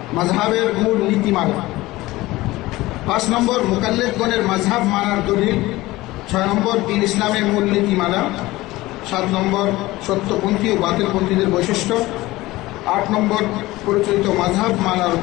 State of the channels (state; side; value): quieter; right; 18.8 dB